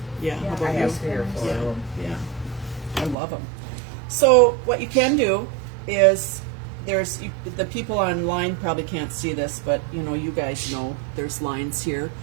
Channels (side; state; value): left; drops out; at 3.2 s